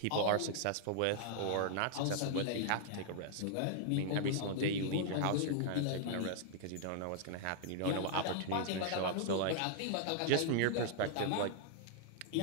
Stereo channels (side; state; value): both; different; correlation -0.01